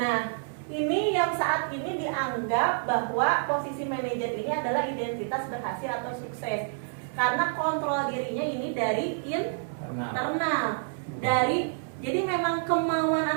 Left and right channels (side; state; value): left; silent; digital silence